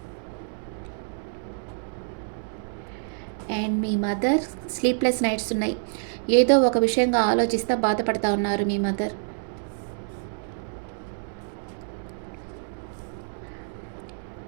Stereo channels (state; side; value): silent; left; 59 dB below the other